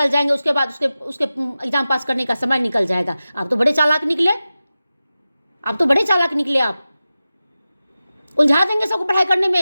जाएंगे, उसके बाद उसके एग्जाम पास करने का समय निकल जाएगा। आप तो बड़े चालाक निकले, आप उलझा देंगे सबको पढ़ाई करने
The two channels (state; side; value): inverted; both; correlation -0.95